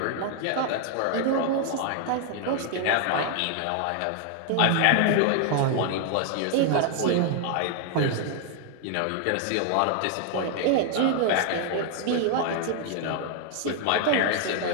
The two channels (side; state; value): both; different; correlation 0.00